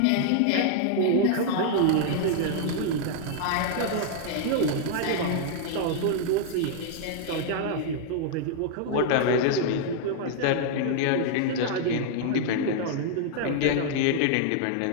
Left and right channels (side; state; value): both; different; correlation -0.01